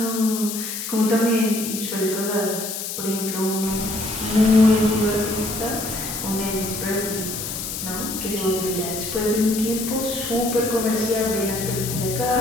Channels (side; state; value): left; noise; hiss, 5 dB below the sound